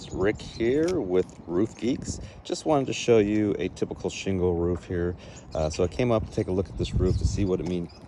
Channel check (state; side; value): identical; both; correlation 1.00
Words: Rick here with Roof Geeks. Just wanted to show you a typical shingle roof here. So I came up to take a look at this roof to see what it